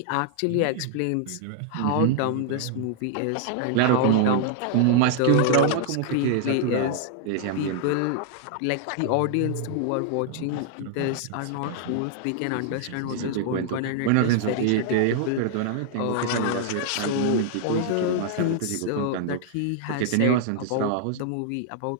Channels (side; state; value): both; different; correlation -0.01